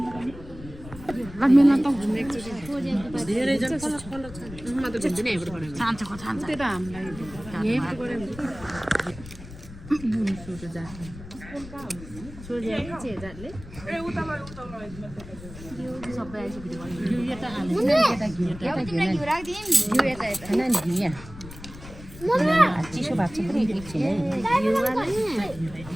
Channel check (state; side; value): noise; left; rumble, 15 dB below the sound